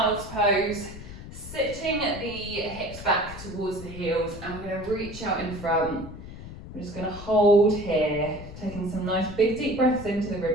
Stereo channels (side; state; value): left; noise; rumble, 13 dB below the sound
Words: pose, sitting the hips back towards the heels, and we're going to reach out in front. We're just going to hold here, taking some nice big deep breaths into the